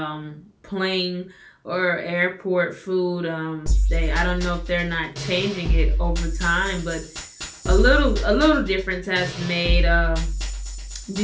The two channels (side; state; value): both; identical; correlation 1.00